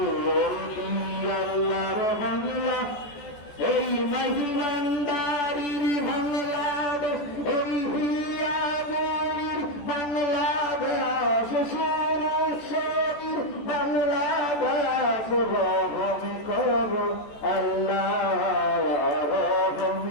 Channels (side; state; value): right; late; 14 ms